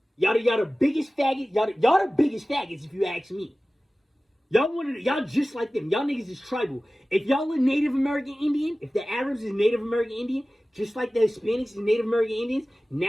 Y'all the biggest faggot. Y'all the biggest faggots if you ask me. Y'all just like them. Y'all niggas is tribal. If y'all are Native American Indian, if the Arabs is Native American Indian, just like the Hispanics is Native American Indians,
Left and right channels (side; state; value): both; normal; correlation 0.97